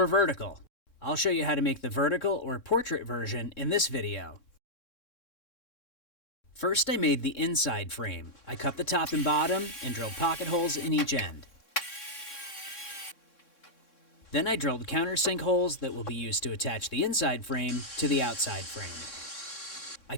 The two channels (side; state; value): right; late; 3.7 ms